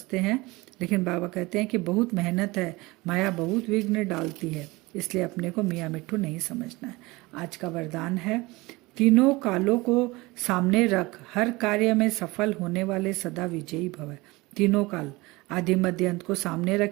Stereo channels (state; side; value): quieter; left; 22.3 dB